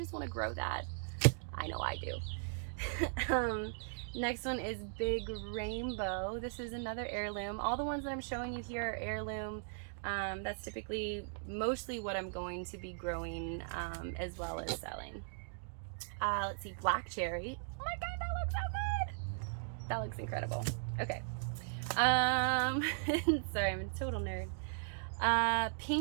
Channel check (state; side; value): silent; left; digital silence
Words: want to grow that? I know I do. Next one is Big Rainbow. This is another heirloom. All the ones that I'm showing you here are heirloom. That's typically mostly what I'm going to be growing as well as selling. Let's see, black cherry. Oh my god, that looks so good. That looks incredible. Okay. Sorry, I'm a total nerd.